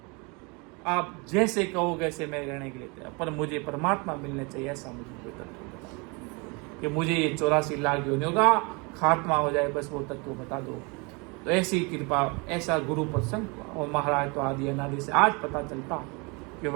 आप जैसे कहो वैसे मैं रहने के लिए तैयार, पर मुझे परमात्मा मिलने चाहिए। ऐसा मुझे कोई तत्व बता कि मुझे ये 84 लाख योनियों का खात्मा हो जाए, बस वो तत्व बता दो। तो ऐसी कृपा, ऐसा गुरु प्रसंग हुआ। और महाराज तो आदि अनादि से आज पता चलता कि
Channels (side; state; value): left; quieter; 29.7 dB